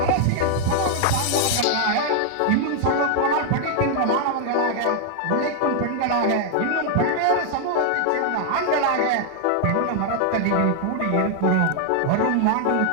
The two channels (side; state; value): both; different; correlation 0.00